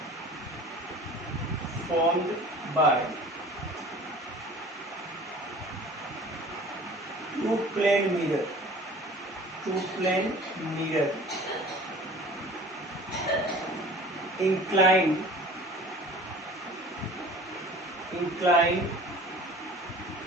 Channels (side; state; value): both; normal; correlation 0.44